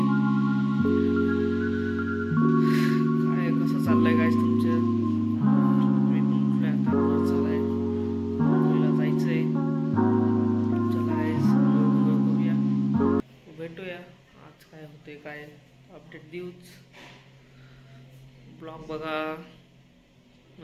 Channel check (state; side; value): identical; both; correlation 1.00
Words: काय कसं चाललंय गाइस तुमचं? मी पण उठलोय आता, चाललंय मुलीला जायचंय. चला गाइस, बघूया, भेटूया आज काय होते, काय अपडेट देऊच. ब्लॉग बघा